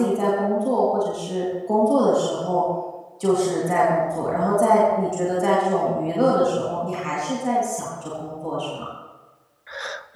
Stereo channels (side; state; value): both; identical; correlation 1.00